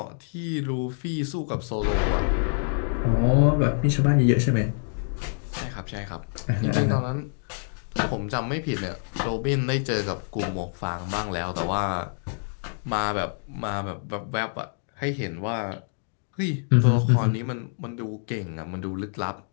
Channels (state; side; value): silent; right; digital silence